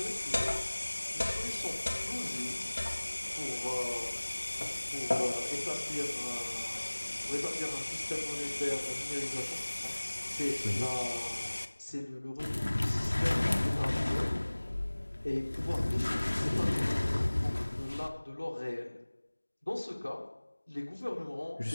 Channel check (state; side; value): inverted; both; correlation -1.00